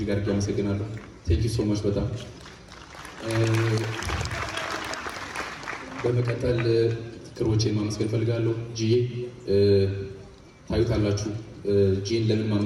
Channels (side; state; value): both; identical; correlation 1.00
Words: አድርጌ አመሰግናለሁ። ቴንክ ዩ ሶ ማች። በጣም በመቀጠል ክሮቼን ማመስገን ፈልጋለሁ። ጂዬ ታዩታላችሁ። ጂን ለምን